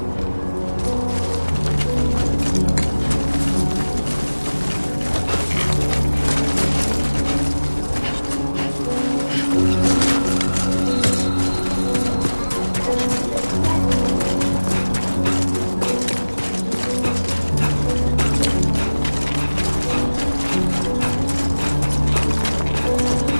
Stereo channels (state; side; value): inverted; both; correlation -1.00